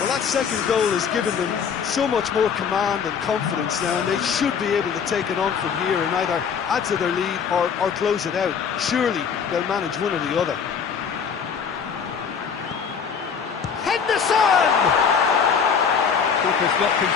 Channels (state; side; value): quieter; right; 6.7 dB